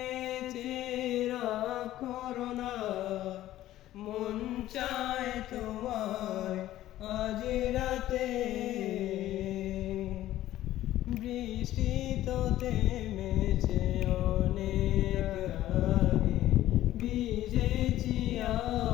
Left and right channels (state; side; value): quieter; right; 14.1 dB